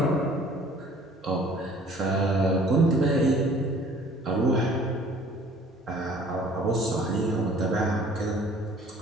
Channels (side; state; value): both; normal; correlation 0.52